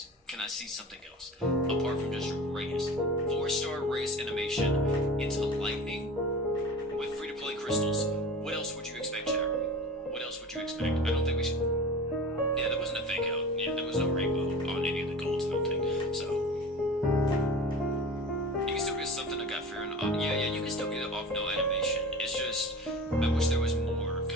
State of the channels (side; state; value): both; normal; correlation 0.36